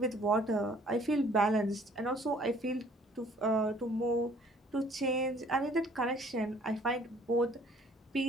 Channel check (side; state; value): both; normal; correlation 0.57